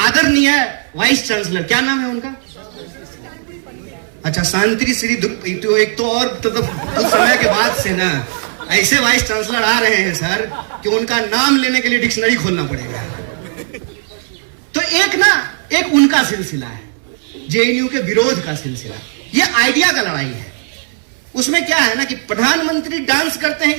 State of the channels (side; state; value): left; silent; digital silence